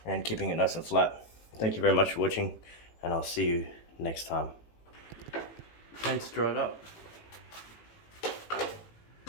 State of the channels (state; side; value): late; right; 18 ms